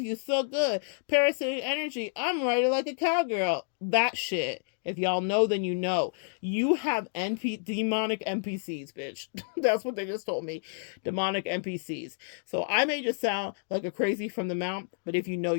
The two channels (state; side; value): silent; right; digital silence